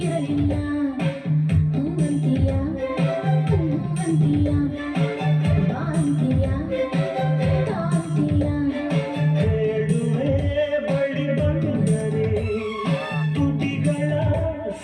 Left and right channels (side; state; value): both; identical; correlation 1.00